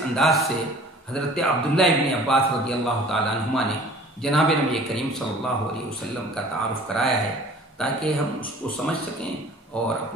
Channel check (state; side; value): normal; both; correlation 0.48